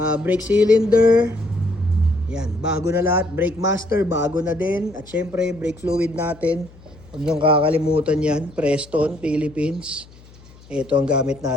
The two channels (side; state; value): left; noise; hum, 23 dB below the sound